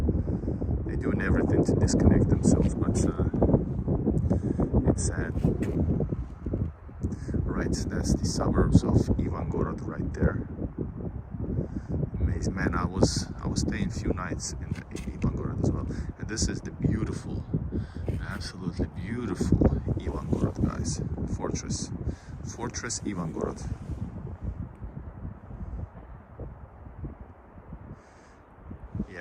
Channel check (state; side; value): identical; both; correlation 1.00